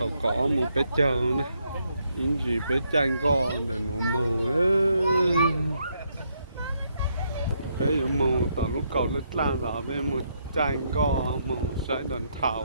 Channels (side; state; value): both; inverted; correlation -0.76